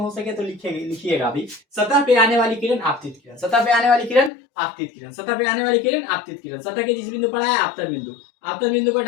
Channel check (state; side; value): drops out; right; at 4.3 s